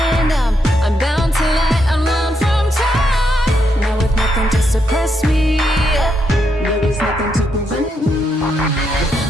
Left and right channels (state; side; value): normal; both; correlation 0.80